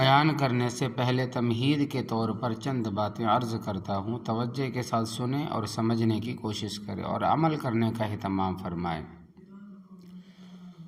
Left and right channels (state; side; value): identical; both; correlation 1.00